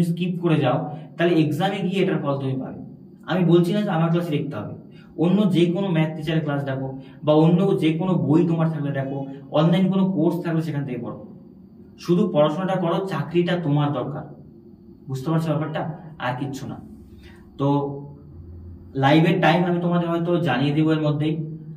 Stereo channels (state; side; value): identical; both; correlation 1.00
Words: স্কিপ করে যাও, তাহলে এক্সামে গিয়ে এটার ফল তুমি পাবে। আমি বলছি না যে আমার ক্লাসে দেখতে হবে, অন্য যে কোনো ম্যাথ টিচারের ক্লাস দেখো, বা অন্য যে কোনো বই তোমার থাকলে দেখো, অনলাইন কোনো কোর্স থাকলে সেখান থেকে পড়ো, শুধু পড়াশোনাটা করো, চাকরিটা তোমার দরকার। বুঝতে পারছো ব্যাপারটা? আর কিচ্ছু না। তো লাইভের টাইম আমি তোমাদের হয়তো জানিয়ে দেবো এর মধ্যেই,